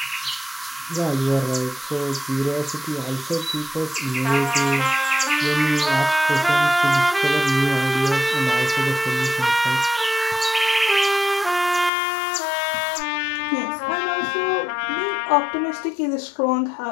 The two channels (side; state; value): right; drops out; at 11.9 s